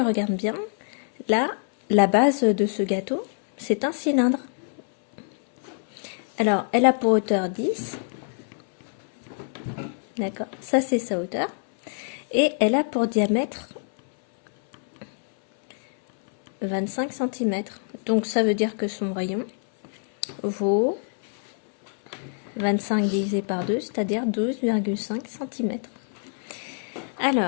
bien, là, la base de ce gâteau, c'est un cylindre. Alors, elle a pour hauteur 10. D'accord, ça c'est sa hauteur. Et elle a pour diamètre 25 cm. Donc ça veut dire que son rayon vaut 25 divisé par 2, c'est-à-dire 12,5 cm.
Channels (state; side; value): silent; right; 62 dB below the other